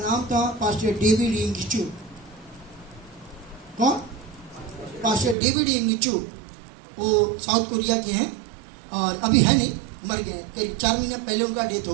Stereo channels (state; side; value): drops out; left; at 5.4 s